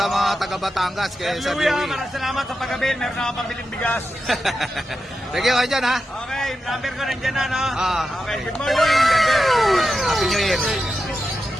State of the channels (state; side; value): normal; both; correlation 0.90